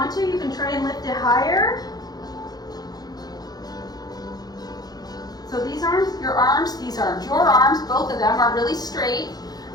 to, you can try and lift it higher. So these arms, your arms, these arms, your arms, both of them are really straight.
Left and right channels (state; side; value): late; right; 0.19 ms